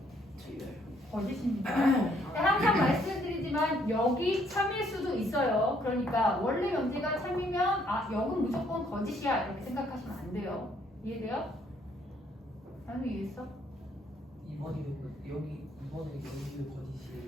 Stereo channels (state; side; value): normal; both; correlation 0.67